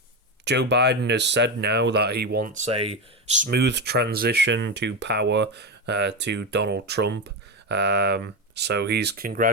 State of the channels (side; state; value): both; normal; correlation 0.14